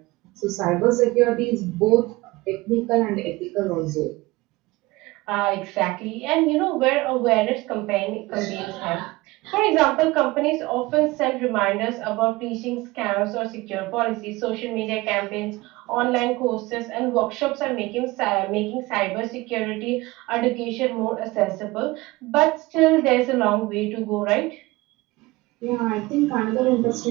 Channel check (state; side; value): quieter; left; 21.0 dB